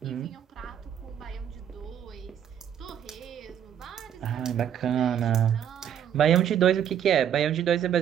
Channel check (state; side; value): quieter; left; 9.4 dB